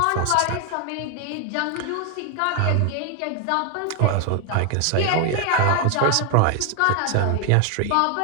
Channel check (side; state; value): both; different; correlation 0.00